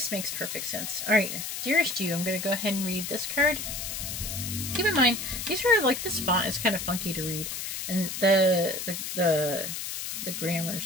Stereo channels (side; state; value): left; noise; hiss, 5 dB below the sound